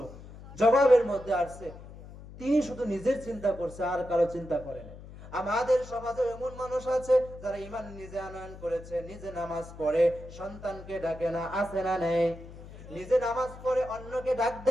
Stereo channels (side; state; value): left; noise; hum, 16 dB below the sound